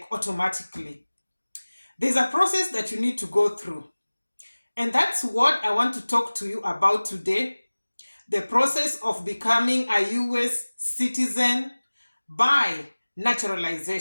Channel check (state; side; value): inverted; both; correlation -1.00